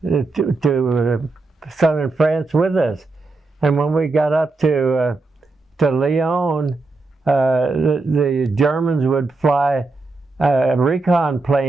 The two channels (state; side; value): quieter; left; 3.5 dB